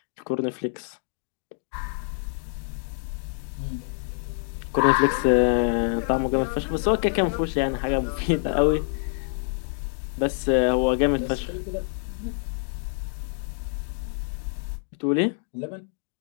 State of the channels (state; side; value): silent; right; digital silence